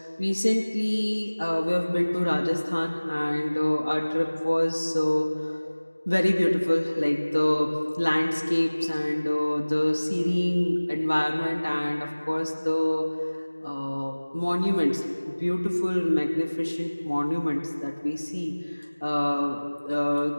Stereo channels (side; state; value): both; inverted; correlation -1.00